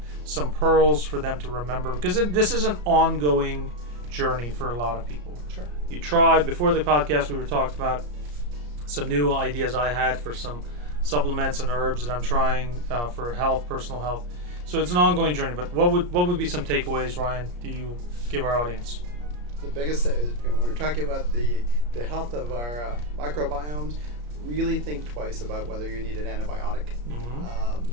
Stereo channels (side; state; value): left; late; 34 ms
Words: some pearls for them to remember, because this is an ongoing journey for a lot of people. Sure. You tried before the podcast, we were talking about some new ideas I had for some supplements and herbs that I'm trying for health, personal health. So it's an ongoing journey. But what would be some takeaways, Ryan, do you give our audience? The biggest thing is, when we're talking about the health of our microbiomes, really think twice about whether you need an antibiotic.